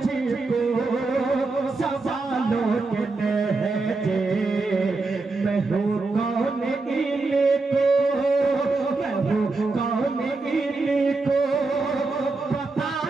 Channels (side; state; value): left; quieter; 3.6 dB